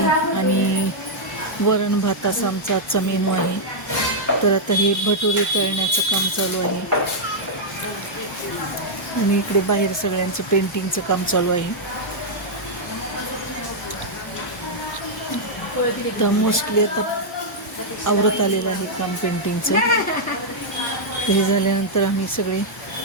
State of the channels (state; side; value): normal; both; correlation -0.05